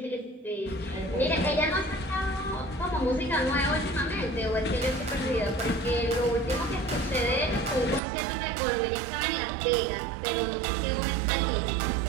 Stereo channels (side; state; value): left; drops out; at 8.0 s